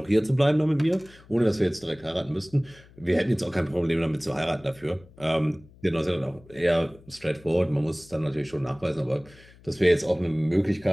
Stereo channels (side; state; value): left; noise; hum, 25 dB below the sound